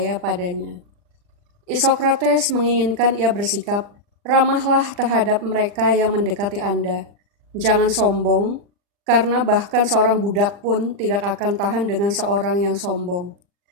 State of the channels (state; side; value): late; left; 40 ms